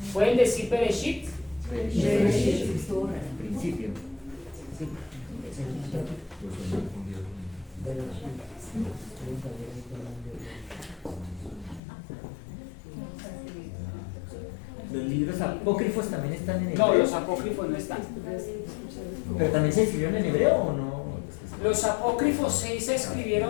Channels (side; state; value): right; drops out; at 11.8 s